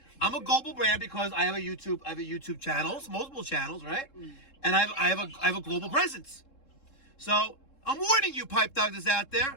I'm a global brand because I have a YouTube channels, multiple channels, right? And I have a global presence. So I'm warning you, Pipe Doctors out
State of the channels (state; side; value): late; right; 3.7 ms